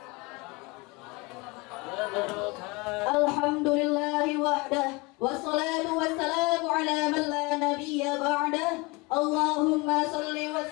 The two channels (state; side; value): quieter; right; 25.9 dB